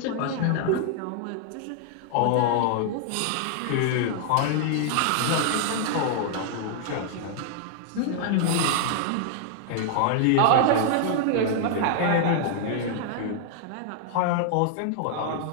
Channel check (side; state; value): both; different; correlation -0.01